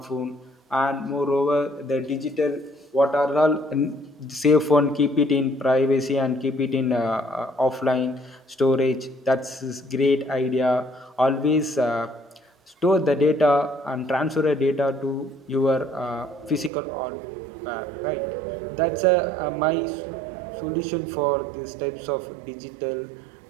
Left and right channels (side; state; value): left; drops out; at 16.7 s